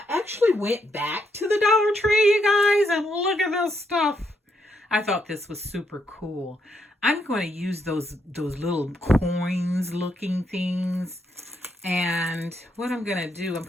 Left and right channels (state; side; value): normal; both; correlation 0.77